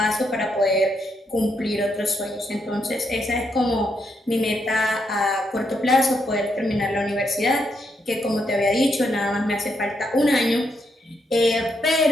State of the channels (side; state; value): both; normal; correlation 0.79